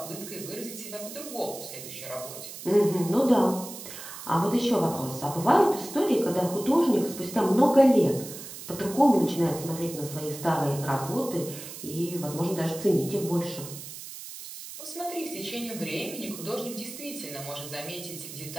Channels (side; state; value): right; noise; hiss, 12 dB below the sound